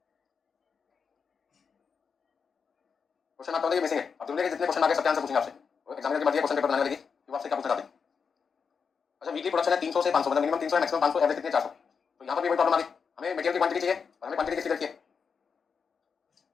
क्वेश्चन आपका मिसिंग है. अब दुनिया के जितने क्वेश्चन आगे सबके आंसर पूछेंगे आपसे. तो एग्जामिनर की मर्जी है क्वेश्चन पेपर बनाने वाली कि वो आपसे क्या पूछना चाहते हैं. अच्छा वीकली प्रोडक्शन है 300 से 500 मतलब मिनिमम 300 है मैक्सिमम 500 एवरेज कितनी है 400. तो यहाँ पर भी वही प्रॉब्लम आ गई. हमें मटेरियल की क्वांटिटी चाहिए और हमें क्वांटिटी किसकी रखी है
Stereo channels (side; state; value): right; quieter; 6.0 dB